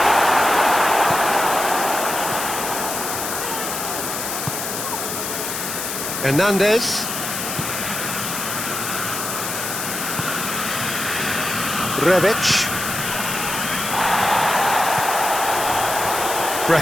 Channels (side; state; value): left; noise; hiss, 4 dB below the sound